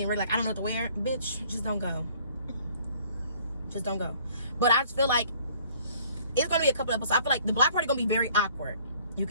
ready. Like I don't know what to wear. Bitch, just don't go. Just don't go. But I just feel like it's gonna be a couple episodes. I feel like the block party gonna be very awkward. You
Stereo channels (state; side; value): inverted; both; correlation -0.57